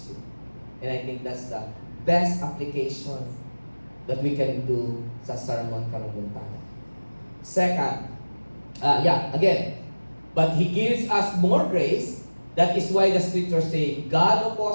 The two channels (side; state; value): both; inverted; correlation -1.00